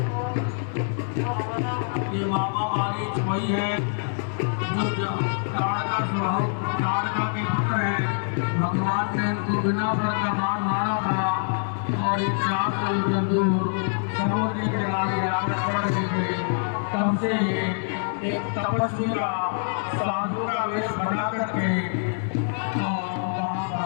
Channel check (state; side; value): silent; right; digital silence